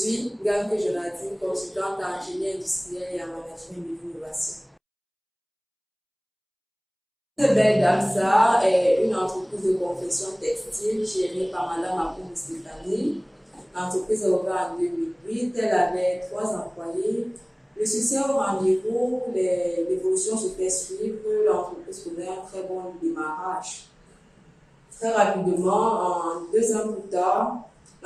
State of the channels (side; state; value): both; identical; correlation 1.00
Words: Ganke Jonathan, consultante en ingénierie industrielle et en management de l'innovation. Belle Dame Salle est une entreprise de confection textile gérée par Madame Akoum Stéphanie. L'entreprise est ouverte en 2008, elle avait 3 employés. Le succès au rendez-vous, l'évolution se fait suivre, l'entreprise connaît un très bon démarrage. Très rapidement, en 2 ans plus tard,